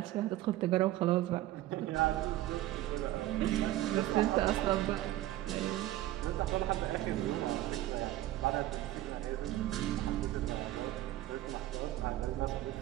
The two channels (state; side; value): quieter; left; 14.9 dB